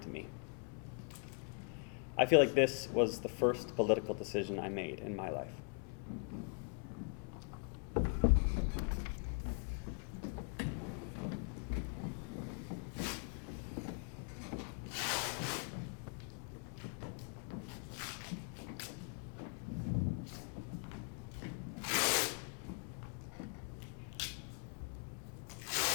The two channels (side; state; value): right; quieter; 39.0 dB